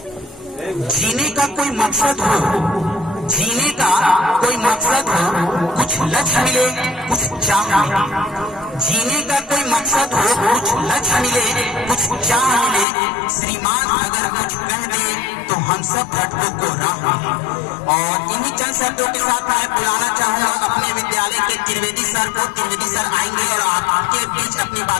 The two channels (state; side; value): drops out; right; at 12.9 s